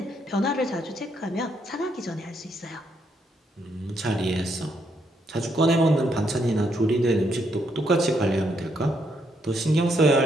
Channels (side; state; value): both; normal; correlation 0.75